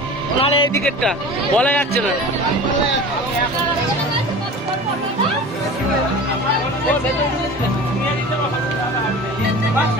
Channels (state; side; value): normal; both; correlation 0.37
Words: নাহলে এইদিকেরটা বলা যাচ্ছে না।